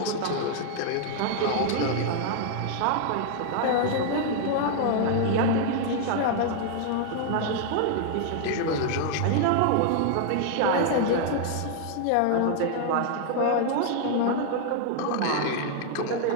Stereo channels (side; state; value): both; different; correlation 0.00